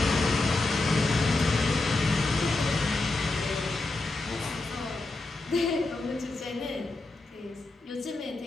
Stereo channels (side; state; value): right; quieter; 3.1 dB